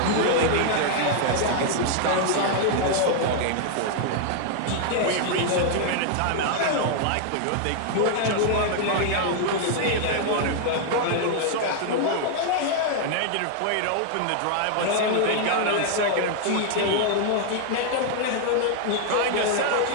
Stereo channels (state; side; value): different; both; correlation 0.00